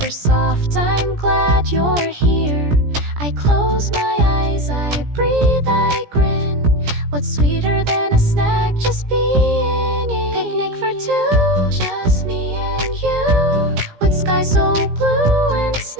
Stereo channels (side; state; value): left; late; 17 ms